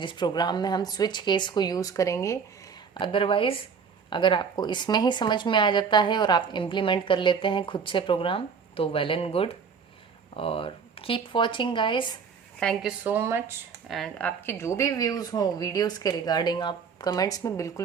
प्रोग्राम में हम स्विच केस को यूज़ करेंगे। अदरवाइज अगर आपको इसमें ही समझ में आ जाता है और आप इम्प्लीमेंट कर लेते हैं खुद से प्रोग्राम, तो वेल एंड गुड। और keep watching guys, thank you so much. And आपके जो भी व्यूज़ हों वीडियोस के रिगार्डिंग आप कमेंट्स में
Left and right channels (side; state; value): left; quieter; 6.0 dB